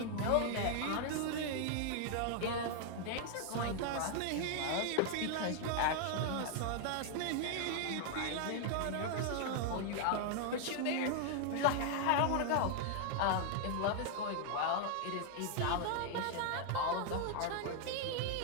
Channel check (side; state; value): both; different; correlation 0.00